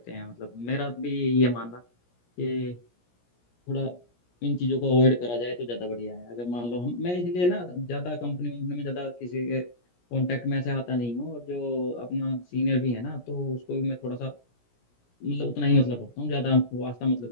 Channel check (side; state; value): right; late; 17 ms